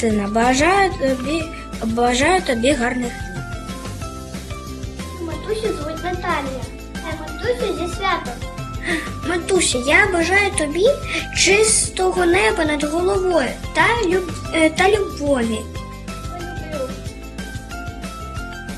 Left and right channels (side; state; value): both; identical; correlation 1.00